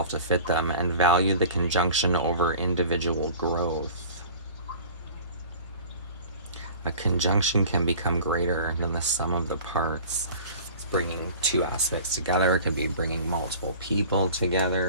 to fit them, and value the conjunction over individual growth. A conjunction can become greater than the sum of the parts. It's bringing two aspects together. It could be bringing multiple people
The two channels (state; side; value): inverted; both; correlation -0.42